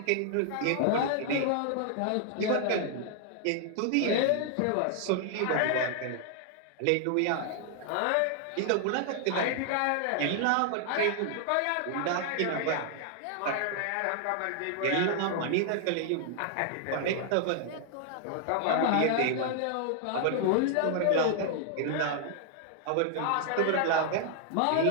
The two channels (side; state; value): both; different; correlation 0.00